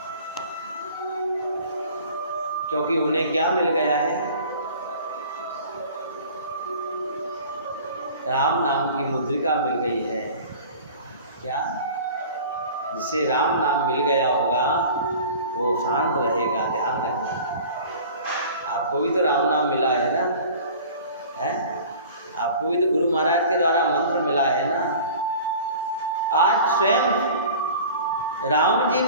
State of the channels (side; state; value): both; inverted; correlation -0.43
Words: क्योंकि उन्हें क्या मिल गया है? राम नाम की मुद्रिका मिल गई है। क्या? जिसे राम नाम मिल गया होगा वो शांत रहेगा। ध्यान रखना। आपको भी तो राम नाम मिला है ना, है? आपको भी तो गुरु महाराज के द्वारा मंत्र मिला है ना। आज स्वयं राम जी